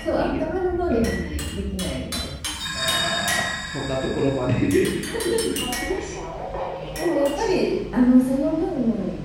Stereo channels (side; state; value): both; identical; correlation 1.00